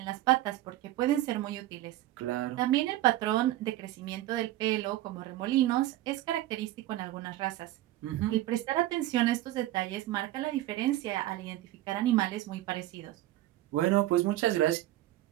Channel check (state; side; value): quieter; left; 15.1 dB